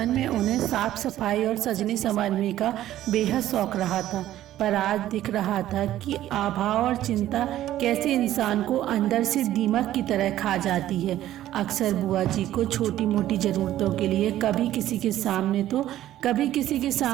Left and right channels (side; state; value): left; quieter; 13.3 dB